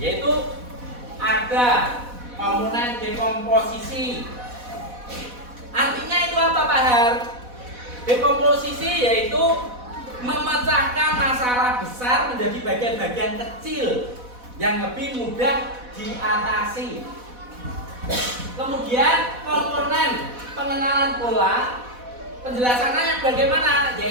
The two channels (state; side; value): late; left; 4.1 ms